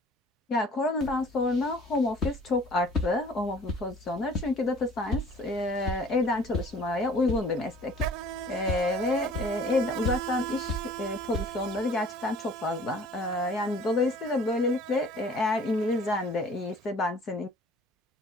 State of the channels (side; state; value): both; normal; correlation 0.50